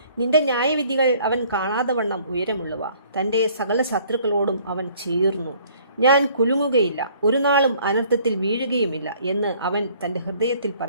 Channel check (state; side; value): inverted; both; correlation -0.58